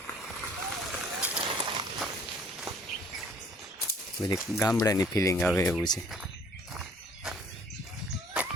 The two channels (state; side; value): normal; both; correlation 0.57